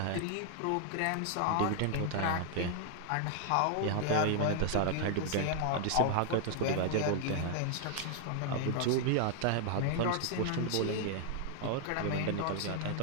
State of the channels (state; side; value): different; both; correlation 0.00